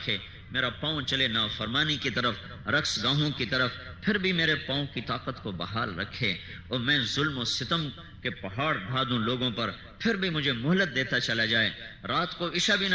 میرا پاؤں چلے نافرمانی کی طرف، رقص گاہوں کی طرف پھر بھی میرے پاؤں کی طاقت کو بحال رکھے، اور میں ظلم و ستم کے پہاڑ ڈھا دوں لوگوں پر پھر بھی مجھے مہلت دیتا چلا جائے، رات کو عشاء بھی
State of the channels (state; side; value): identical; both; correlation 1.00